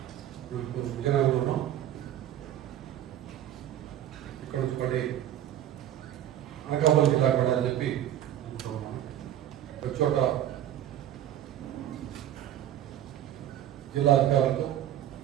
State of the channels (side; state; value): left; quieter; 11.7 dB